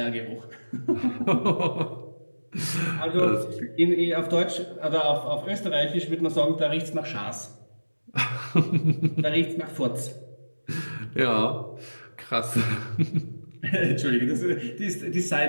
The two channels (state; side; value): inverted; both; correlation -1.00